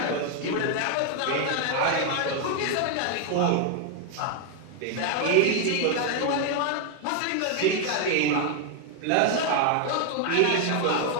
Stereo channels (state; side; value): different; both; correlation 0.00